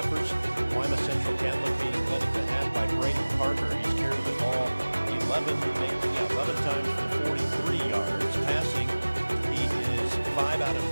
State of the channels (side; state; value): both; inverted; correlation -1.00